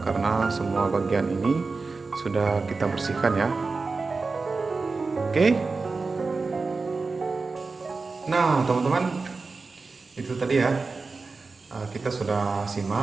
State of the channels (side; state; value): left; quieter; 4.1 dB